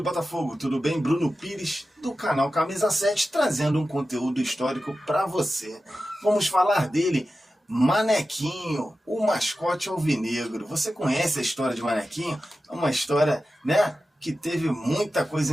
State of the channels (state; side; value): normal; both; correlation 0.93